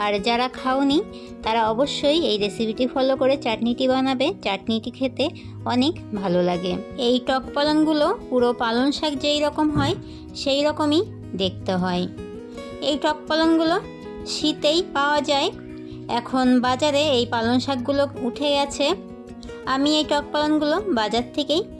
আর যারা খাওনি তারা অবশ্যই এই রেসিপিটি ফলো করে চাটনিটি বানাবে। চাটনিটি খেতে অনেক ভালো লাগে। এই টক পালনগুলো পুরো পালন শাক যেই রকম হয় সেই রকমই দেখতে হয়। এই টক পালনগুলো শীতেই পাওয়া যায়। এখন বাজারে এই পালন শাকগুলো উঠে গেছে। আমি এই টক পালনগুলো বাজার থেকেই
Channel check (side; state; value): both; identical; correlation 1.00